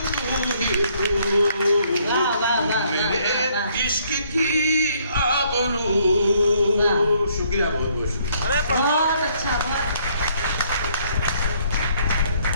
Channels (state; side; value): inverted; both; correlation -0.66